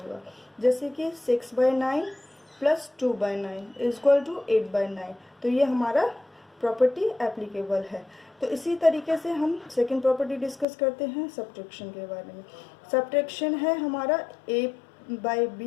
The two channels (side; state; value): right; drops out; at 10.7 s